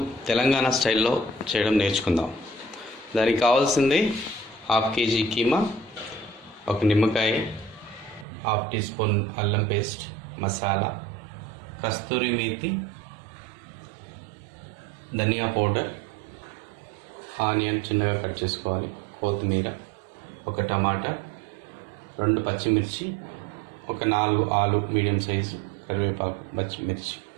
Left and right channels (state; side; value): drops out; left; at 8.2 s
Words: తెలంగాణ స్టైల్లో చేయడం నేర్చుకుందాం. దానికి కావాల్సింది 1/2 kg కీమా, ఒక నిమ్మకాయ, 1/2 teaspoon అల్లం పేస్ట్, మసాలా, కస్తూరి మేతి, ధనియా పౌడర్, ఆనియన్ చిన్నగా కట్ చేసుకోవాలి, కొత్తిమీర, ఒక టమాటా, 2 పచ్చిమిర్చి, ఒక 4 ఆలు మీడియం సైజు, కరివేపాకు, పచ్చిమిర్చి,